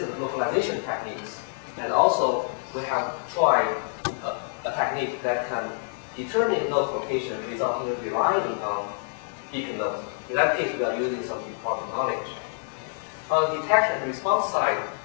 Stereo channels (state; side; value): silent; right; digital silence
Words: localization techniques, and also we have tried a technique that can determine node location without even relying on beacon nodes. In that case, we are using some important knowledge. On the detection and response side,